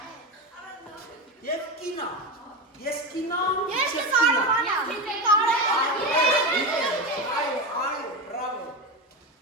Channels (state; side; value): normal; both; correlation 0.18